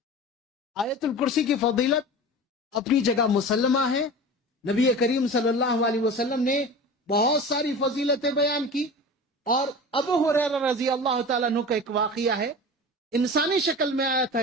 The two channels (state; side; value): normal; both; correlation 0.34